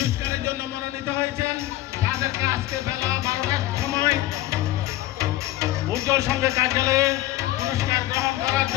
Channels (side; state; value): right; quieter; 15.6 dB